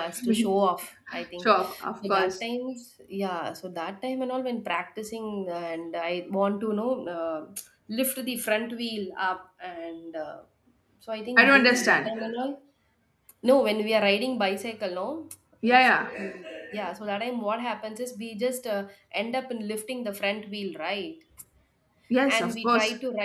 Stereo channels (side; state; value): both; identical; correlation 1.00